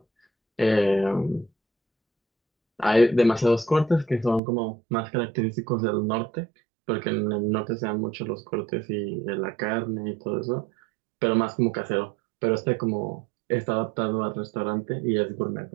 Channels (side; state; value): left; drops out; at 4.4 s